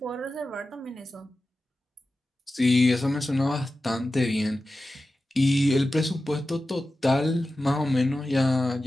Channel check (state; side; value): normal; both; correlation 0.94